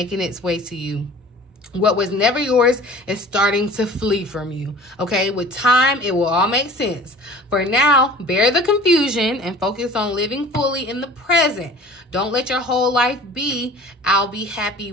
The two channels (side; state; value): both; normal; correlation 0.44